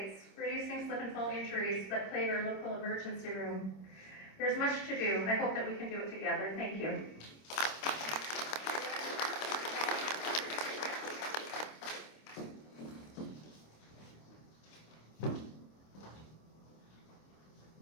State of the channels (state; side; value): late; right; 26 ms